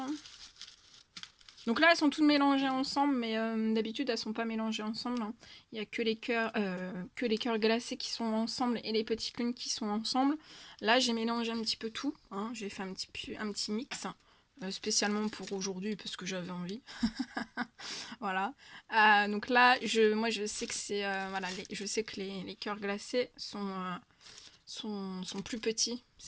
Donc là, elles sont toutes mélangées ensemble, mais d'habitude, elles sont pas mélangées ensemble. Hein. Il n'y a que les cœurs glacés qui sont ensemble et les petites lunes qui sont ensemble. Là, j'ai mélangé un petit peu tout. Hein. J'ai fait un petit mix, spécialement pour aujourd'hui, parce que j'avais envie. Voilà. Donc là, moi, je sais que c'est... voilà, je sais que les cœurs glacés sont plus petits.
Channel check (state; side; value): identical; both; correlation 1.00